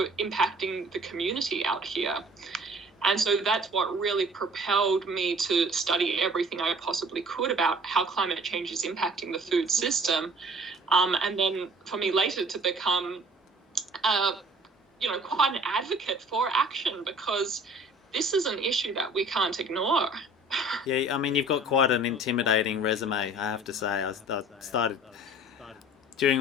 impacting the community out here. And so that's what really propelled me to study everything I possibly could about how climate change is impacting the food system. And then for me later to become, quite an advocate for action, because this is an issue that we can't ignore. Yeah, I mean, you've got quite an intimidating resume, I have to say. I started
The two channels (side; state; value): both; normal; correlation 0.50